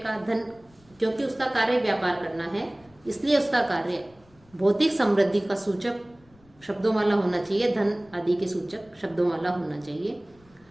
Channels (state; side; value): noise; left; rumble, 29 dB below the sound